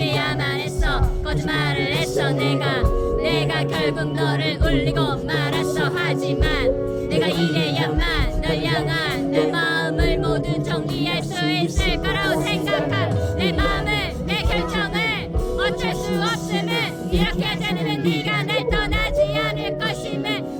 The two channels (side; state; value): both; identical; correlation 1.00